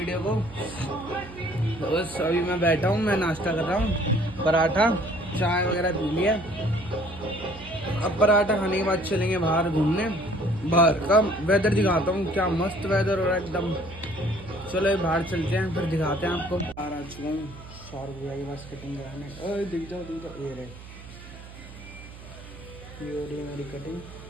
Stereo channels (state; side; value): noise; right; hum, 16 dB below the sound